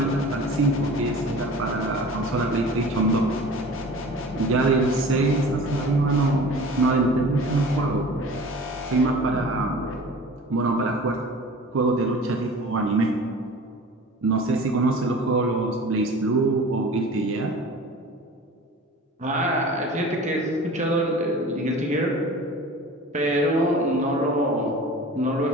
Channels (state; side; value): normal; both; correlation 0.40